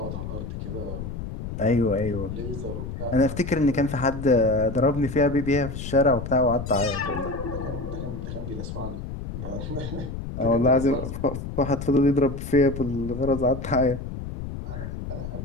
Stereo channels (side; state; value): left; noise; rumble, 7 dB below the sound